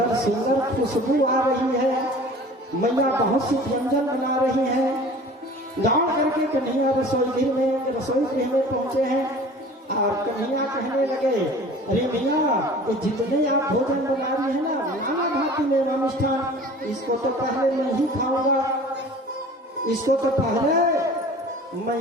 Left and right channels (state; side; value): normal; both; correlation 0.44